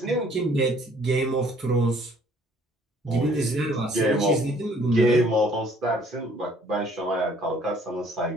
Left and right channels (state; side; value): normal; both; correlation 0.59